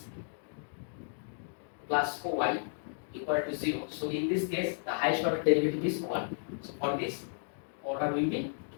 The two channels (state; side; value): silent; right; digital silence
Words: plus y equal to 0, so in this case the highest order derivative is 1. So for this, order will be